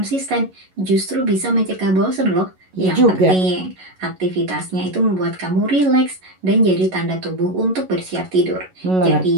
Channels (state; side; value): late; left; 11 ms